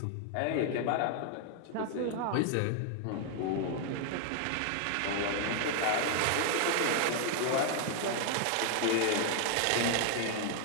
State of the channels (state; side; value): different; both; correlation 0.00